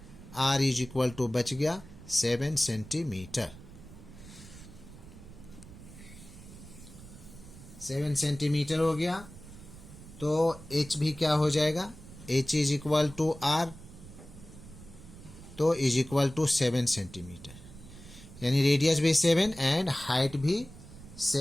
r इज इक्वल टू बच गया 7 सेंटीमीटर, 7 सेंटीमीटर हो गया। तो h भी क्या हो जाएगा, h is equal to r, तो इज इक्वल टू 7 सेंटीमीटर, यानी रेडियस भी 7 एंड हाइट भी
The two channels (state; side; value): noise; right; rumble, 17 dB below the sound